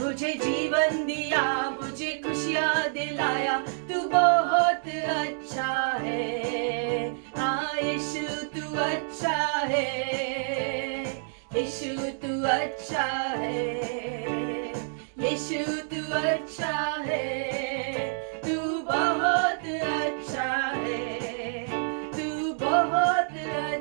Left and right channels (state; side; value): silent; left; digital silence